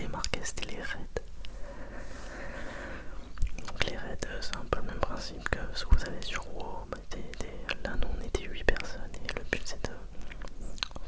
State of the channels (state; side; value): identical; both; correlation 1.00